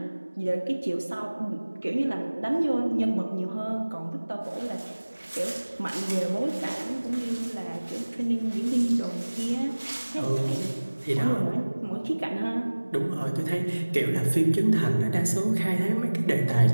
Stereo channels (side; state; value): both; inverted; correlation -1.00